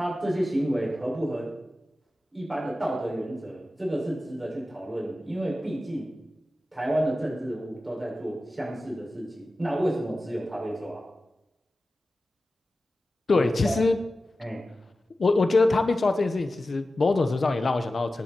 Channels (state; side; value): normal; both; correlation 0.94